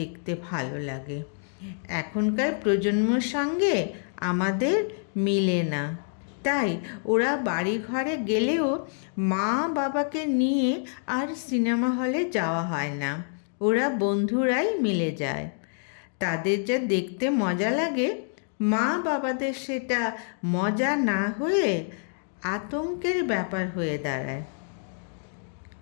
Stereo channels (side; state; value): right; silent; 60 dB below the other